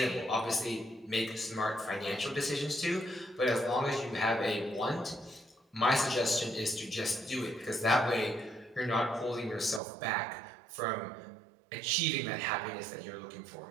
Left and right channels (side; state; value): left; drops out; at 9.8 s